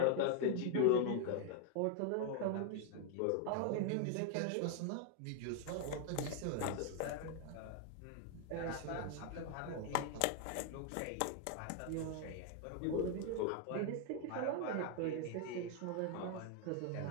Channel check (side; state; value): both; different; correlation 0.00